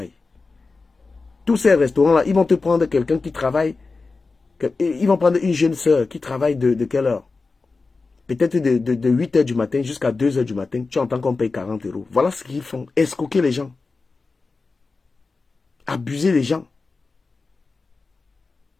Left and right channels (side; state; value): right; quieter; 4.0 dB